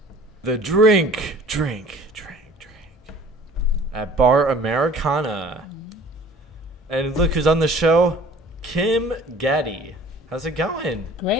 the drink at Bar Americana. And look who's on the show, Kim Gaddy. How's it going?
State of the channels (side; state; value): both; normal; correlation 0.49